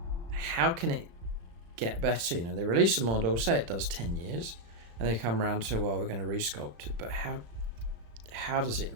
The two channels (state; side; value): late; left; 35 ms